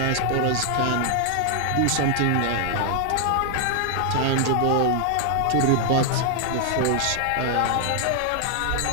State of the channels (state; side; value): different; both; correlation 0.00